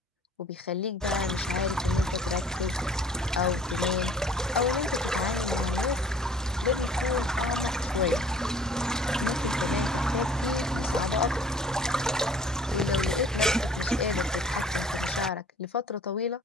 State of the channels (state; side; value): normal; both; correlation 0.53